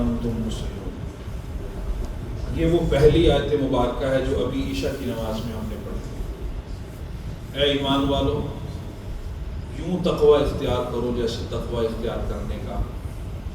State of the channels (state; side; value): identical; both; correlation 1.00